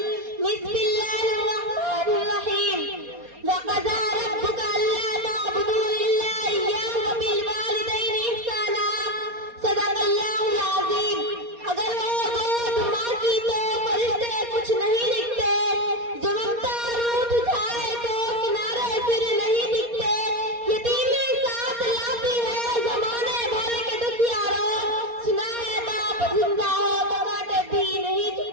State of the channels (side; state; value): left; late; 4.2 ms